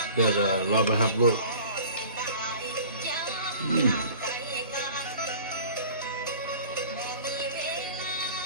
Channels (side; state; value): both; inverted; correlation -0.44